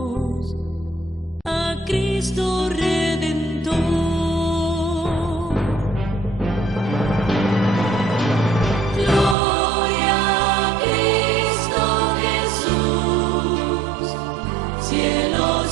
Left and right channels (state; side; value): drops out; left; at 9.3 s